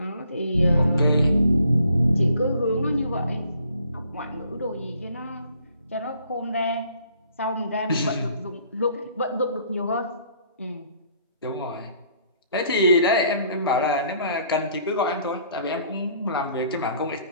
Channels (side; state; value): both; inverted; correlation -0.61